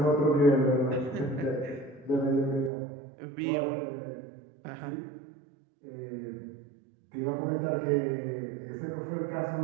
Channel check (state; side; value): drops out; left; at 2.7 s